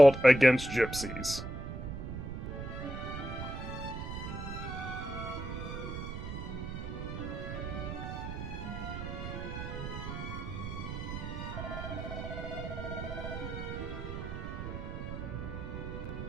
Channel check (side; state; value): right; noise; rumble, 6 dB below the sound